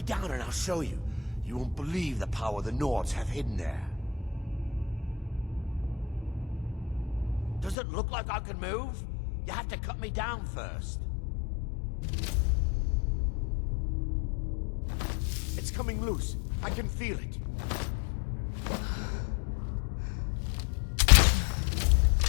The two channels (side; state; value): right; drops out; at 7.8 s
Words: down and I'll show you. You won't believe the power the Nords have hidden there. Does it look like I can move? You have to cut me down first. It's coming loose. I can feel it.